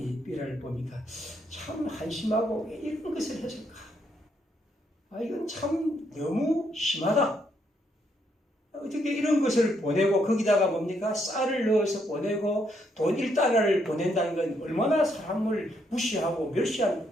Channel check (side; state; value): both; normal; correlation 0.75